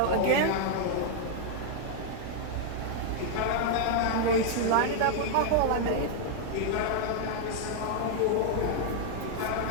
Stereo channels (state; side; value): different; both; correlation 0.00